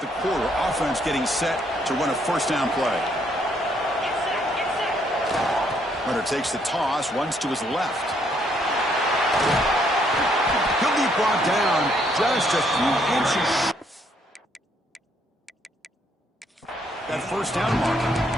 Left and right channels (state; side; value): normal; both; correlation 0.70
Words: quarter. Offense getting set to run a first down play. Runner takes the toss, runs to his left. He'll be brought down just a few inches. That first down marker.